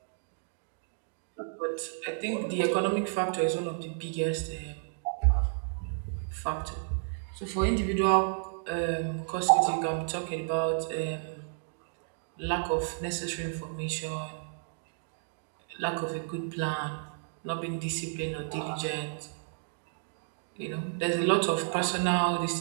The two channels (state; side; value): silent; left; digital silence